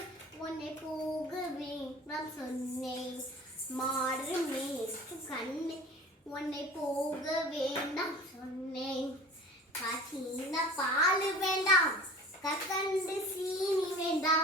உன்னை போக வேண்டாம் சொன்னேன் மாறு மேய்க்கும் கண்ணை உன்னை போக வேண்டாம் சொன்னேன் காட்சியின பால் வேண்டாம் கற்கண்டு சீனி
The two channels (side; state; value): both; normal; correlation 0.41